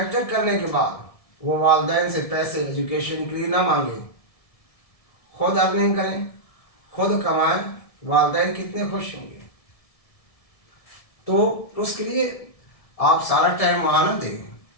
करने के बाद वो वालिदैन से पैसे एजुकेशन के लिए ना मांगे, खुद अर्निंग करें, खुद कमाएं। वालिदैन कितने खुश होंगे। तो उसके लिए आप सारा टाइम वहाँ ना दें।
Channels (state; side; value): late; right; 1.7 ms